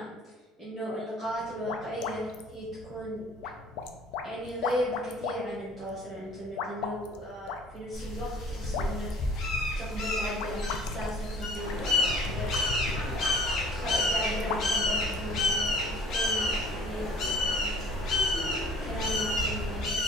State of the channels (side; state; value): both; normal; correlation 0.52